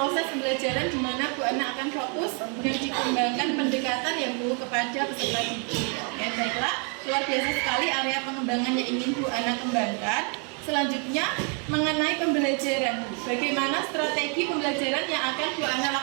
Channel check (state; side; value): quieter; left; 38.2 dB